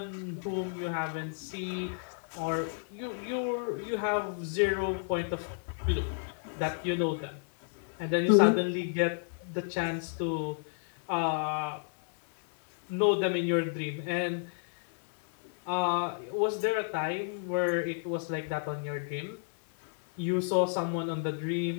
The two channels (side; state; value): right; silent; digital silence